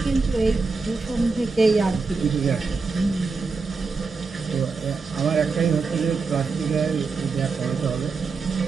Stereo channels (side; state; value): left; quieter; 4.5 dB